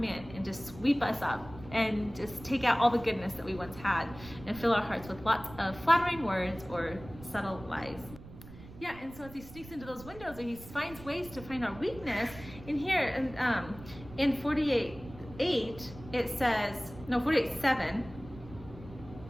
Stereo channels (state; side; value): noise; right; rumble, 16 dB below the sound